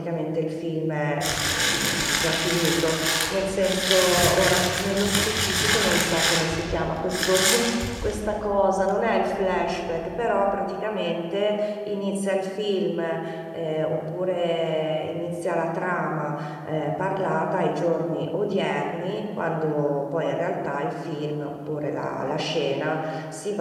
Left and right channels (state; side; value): identical; both; correlation 1.00